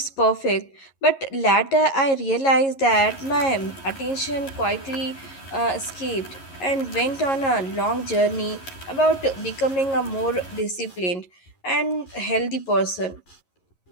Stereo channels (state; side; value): late; right; 11 ms